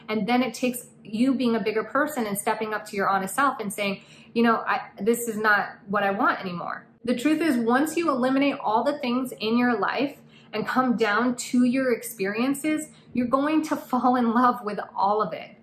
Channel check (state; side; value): identical; both; correlation 1.00